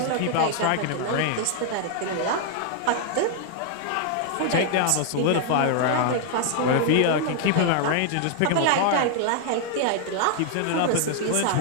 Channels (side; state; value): both; different; correlation 0.00